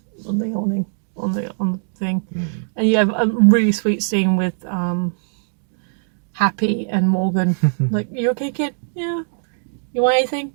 the awning, on the thing, and you have a really sweet scene with Happy and Morgan. Like, you okay, kid? Yeah. You want anything?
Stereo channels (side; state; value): left; silent; digital silence